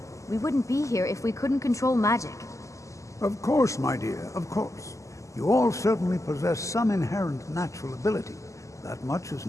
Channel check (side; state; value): right; late; 0.16 ms